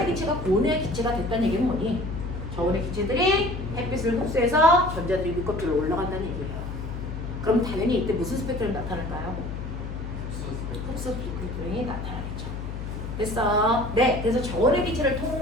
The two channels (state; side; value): noise; left; hum, 6 dB below the sound